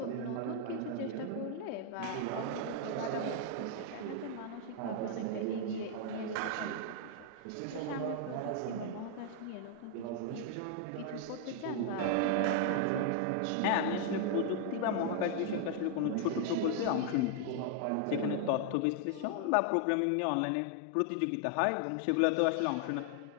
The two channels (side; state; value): both; different; correlation 0.00